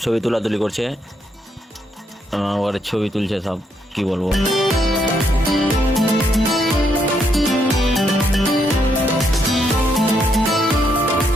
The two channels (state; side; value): normal; both; correlation 0.76